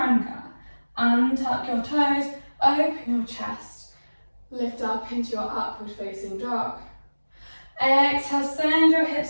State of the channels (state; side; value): inverted; both; correlation -1.00